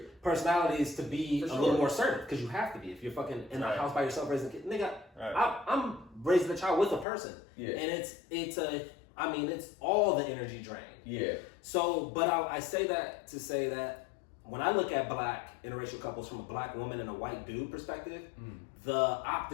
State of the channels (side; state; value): right; drops out; at 7.1 s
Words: personalities to be a little more assertive, because you have to be if you're fucking in a house by yourself raising a kid. Nigga, I'm raising a child with a person, and it's all the energy drain. Yeah. So, but I say that to say that when I look at black interracial couples from a black woman and a white dude perspective, the